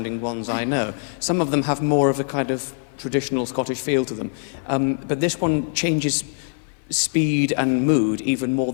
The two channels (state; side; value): silent; right; 57 dB below the other